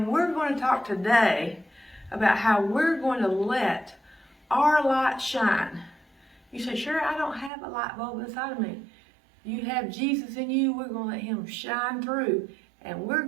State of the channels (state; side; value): drops out; left; at 7.5 s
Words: we're going to talk today about how we're going to let our light shine. You say, sure, I don't have a light bulb inside of me. You have Jesus in you. We're going to let him shine through. And we're